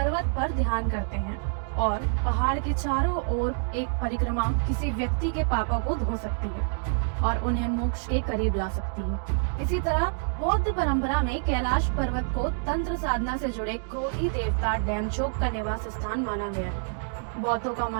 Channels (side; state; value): left; silent; digital silence